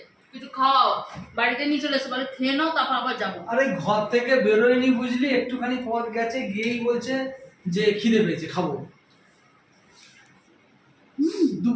কিছু খাও, বাড়িতে নিয়ে চলে এসে বলে খেয়ে নাও, তারপর আবার যাবো। আরে ঘর থেকে বেরোয়নি বুঝলি, একটুখানি পথ গেছে, গিয়েই বলছে যে খিদে পেয়েছে খাবো।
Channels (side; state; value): both; identical; correlation 1.00